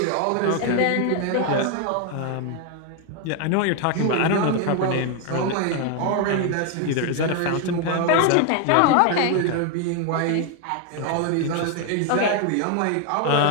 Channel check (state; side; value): different; both; correlation 0.01